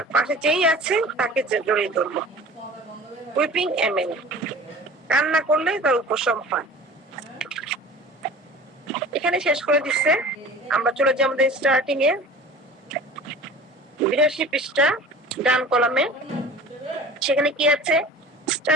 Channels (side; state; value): both; normal; correlation 0.41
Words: পাশে যেই আছে তাকে জড়িয়ে ধরলো। উইপিং এমেন, কান্না করলে তার উপশম হয়। এখানে শেষ করে দিচ্ছে। আমরা চলে যাই আমাদের স্টার্টিং এ 82 পৃষ্ঠা ডান কলামে। সেখানে কি আছে,